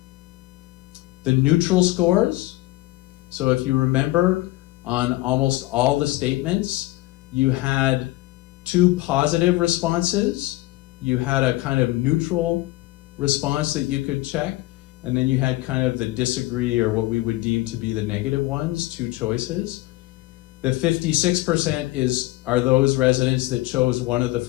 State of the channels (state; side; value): quieter; right; 18.7 dB